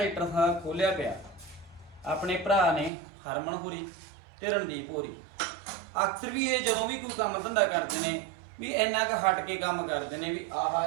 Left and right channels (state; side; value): drops out; left; at 2.9 s